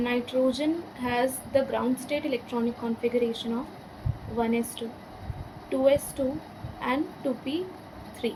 has the ground state electronic configuration of 1s2, 2s2 and 2p3.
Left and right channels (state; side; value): identical; both; correlation 1.00